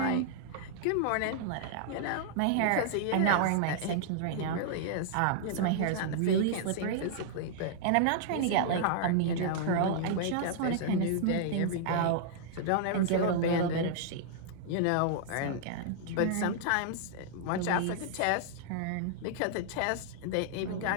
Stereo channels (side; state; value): both; different; correlation -0.01